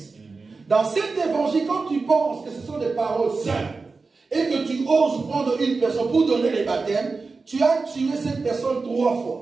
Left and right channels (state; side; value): quieter; left; 4.1 dB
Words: Dans cet évangile, quand tu penses que ce sont des paroles simples et que tu oses prendre une personne pour donner les baptêmes, tu as tué cette personne 3